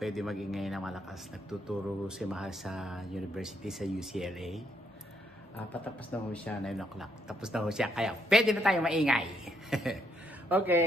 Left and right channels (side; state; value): both; normal; correlation 0.74